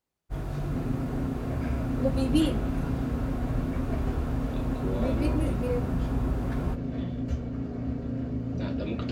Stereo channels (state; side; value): identical; both; correlation 1.00